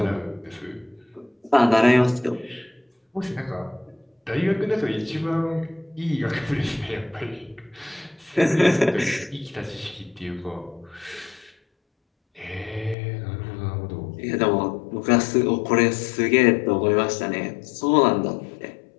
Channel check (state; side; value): drops out; right; at 13.0 s